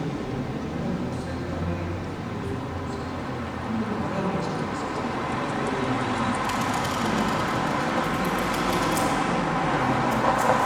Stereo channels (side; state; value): both; identical; correlation 1.00